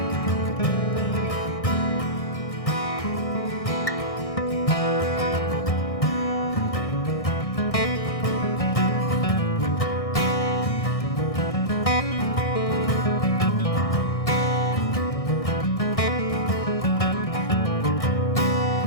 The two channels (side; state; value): right; late; 1.6 ms